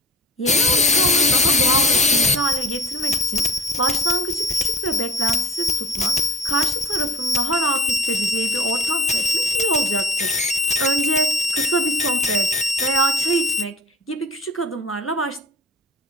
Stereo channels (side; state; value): both; normal; correlation 0.36